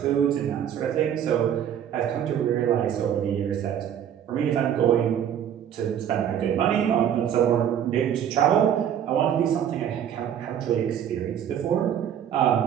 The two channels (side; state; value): left; quieter; 9.5 dB